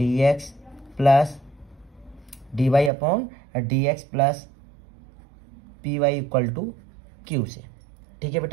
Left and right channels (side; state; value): left; drops out; at 2.9 s